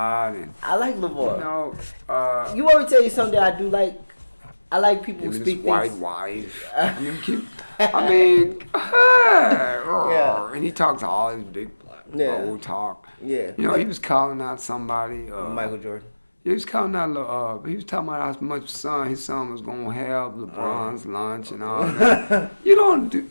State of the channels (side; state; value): both; inverted; correlation -1.00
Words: and I like LeVar. you You want me to tell you something that I do like? I like people who his speak white things. wife. Yeah. And he talks all his big old talk. Yeah. He was calling out somebody. Michael Jordan. He was calling out. He was talking about how much his son was gonna have LeBron's lunch and all that. You don't do,